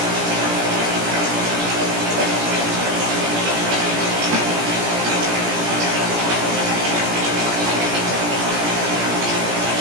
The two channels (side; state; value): left; late; 17 ms